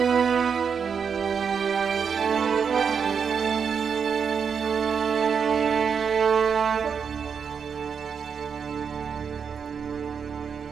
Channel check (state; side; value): quieter; left; 6.5 dB